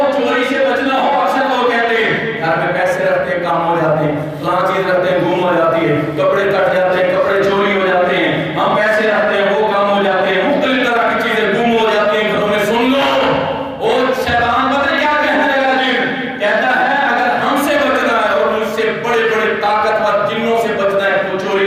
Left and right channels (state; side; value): identical; both; correlation 1.00